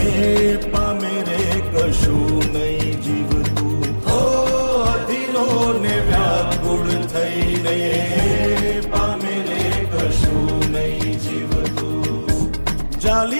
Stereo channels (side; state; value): both; inverted; correlation -1.00